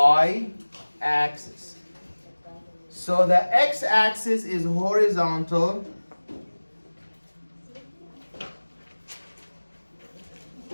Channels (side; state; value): both; inverted; correlation -1.00